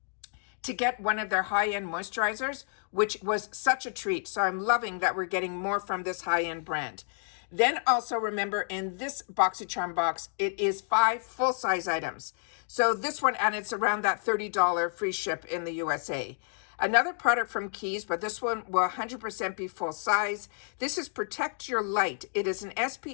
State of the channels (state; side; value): silent; right; 58 dB below the other